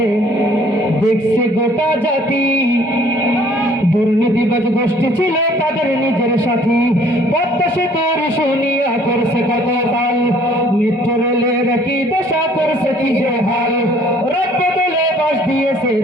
দেখছে গোটা জাতি, দুর্নীতিবাজ গোষ্ঠী ছিল তাদের নিজের সাথী। পদ্মা সেতুর শুনিয়া করছে কত তাল, মেট্রো রেলের কি দশা করছে কি যে হাল। রথ বদলে বাস দিয়েছে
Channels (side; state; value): both; normal; correlation 0.57